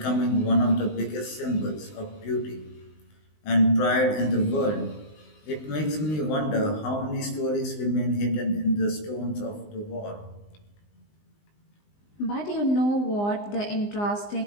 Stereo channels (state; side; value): late; right; 19 ms